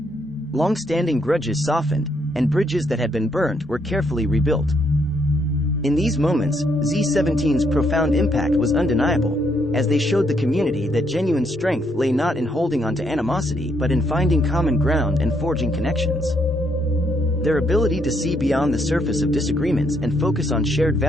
Long-standing grudges softened, and bridges that had been burned were carefully rebuilt. In these moments, Z17's profound impact was undeniable, as they showed the community that genuine strength lay not in holding on to animosity but in finding common ground and forging connections. Their ability to see beyond the surface of disagreements and focus on shared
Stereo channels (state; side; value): normal; both; correlation 0.73